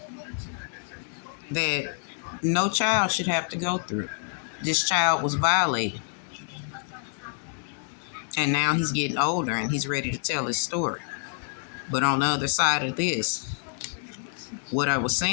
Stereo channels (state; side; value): silent; right; digital silence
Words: that no child should have to go through. This child was violated. And now he's getting older and he's ready to tell his story. But on the other side of this, what I was